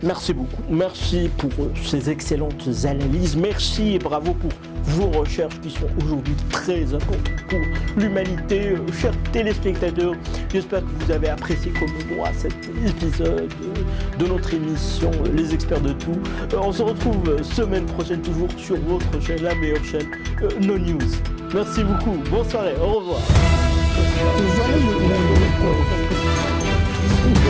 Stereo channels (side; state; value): both; identical; correlation 1.00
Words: Merci beaucoup. Merci pour ces excellentes analyses. Merci et bravo pour vos recherches qui sont aujourd'hui très importantes pour l'humanité. Chers téléspectateurs, j'espère que vous avez apprécié comme moi cet épisode de notre émission Les Experts de Tout. On se retrouve semaine prochaine toujours sur votre chaîne, la meilleure chaîne, No News. Merci beaucoup, bonne soirée, au revoir.